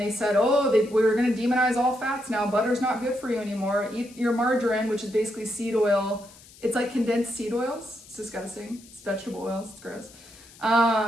said, oh, we were going to demonize all fats now. Butter's not good for you anymore. Eat your margarine, which is basically seed oil. It's like condensed seed oils. It's disgusting. It's vegetable oils. It's gross.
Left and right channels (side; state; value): left; noise; hiss, 22 dB below the sound